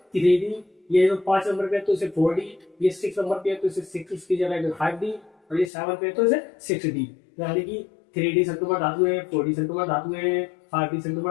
3D, ये जो 5 नंबर पे है तो इसे 4D, ये 6 नंबर पे है तो इसे 6 इसकी जगह 5D, और ये 7 पे है तो इसे 6D, यानी कि 3D संक्रमण धातुएं, 4D संक्रमण धातुएं, 5D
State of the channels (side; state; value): right; drops out; at 5.7 s